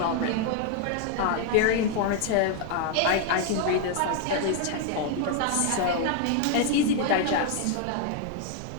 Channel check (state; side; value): different; both; correlation 0.00